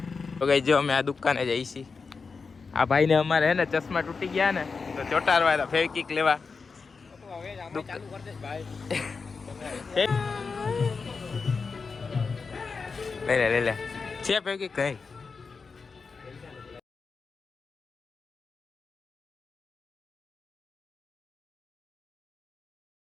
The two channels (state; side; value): quieter; right; 4.8 dB